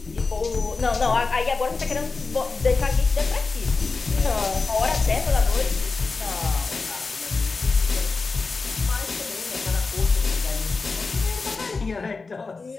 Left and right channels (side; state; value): right; quieter; 4.1 dB